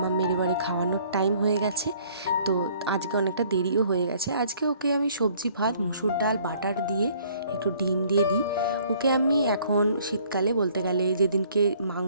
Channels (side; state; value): both; inverted; correlation -0.59